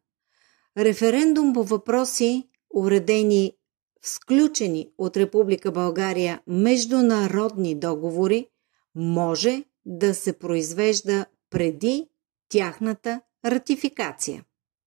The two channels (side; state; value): left; quieter; 27.0 dB